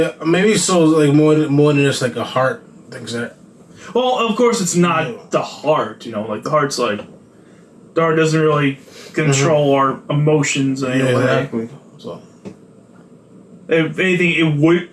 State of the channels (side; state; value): both; identical; correlation 1.00